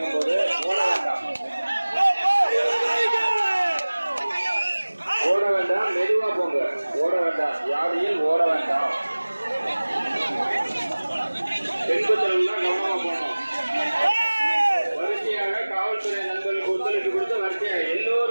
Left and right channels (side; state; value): both; inverted; correlation -1.00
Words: போது ஓட வேண்டாம், ஓட வேண்டாம், மெதுவா போங்க. ஓட வேண்டாம், யானையில் ஓட வேண்டாம். பின்பற்றல்கள் கவனமா போகணும். வரிசையாக காவல்துறை நண்பர்களுக்கு ஒத்துழைப்பு கொடுத்து வரிசையாக